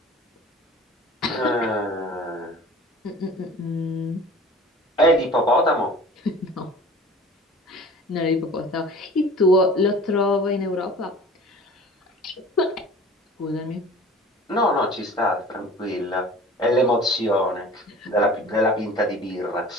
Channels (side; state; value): both; normal; correlation 0.43